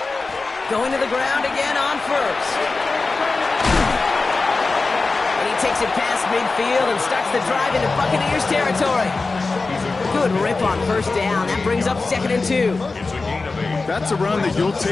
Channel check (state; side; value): quieter; right; 3.8 dB